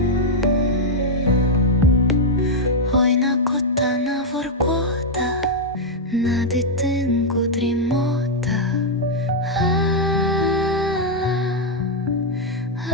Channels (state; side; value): normal; both; correlation -0.02